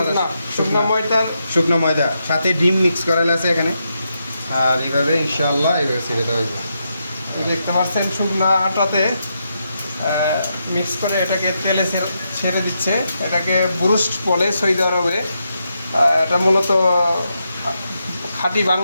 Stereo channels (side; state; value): both; inverted; correlation -0.83